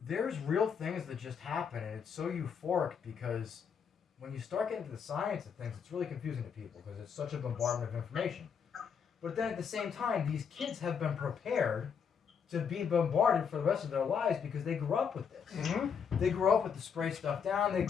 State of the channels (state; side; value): quieter; right; 6.9 dB